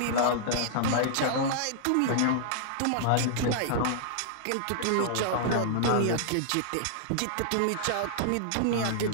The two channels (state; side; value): different; both; correlation -0.01